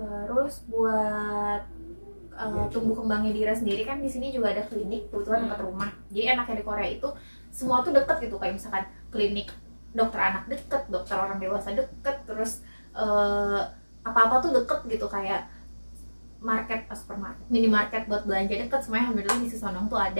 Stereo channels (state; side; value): inverted; both; correlation -1.00